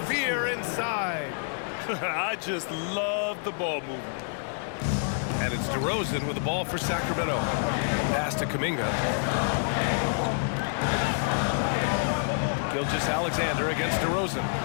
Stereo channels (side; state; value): right; silent; digital silence